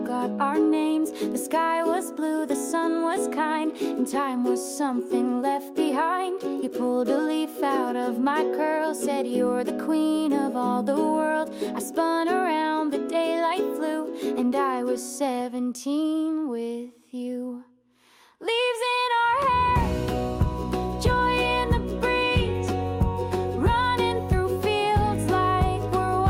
our names. The sky was blue, the sun was kind, and time was something left behind. You pulled a leaf out of my curl, said you're the queen of all the world. I spun around, the daylight flew, and I was 17 with you. Leaves in our hair, joy in the breeze, running through fields like we're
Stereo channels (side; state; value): both; identical; correlation 1.00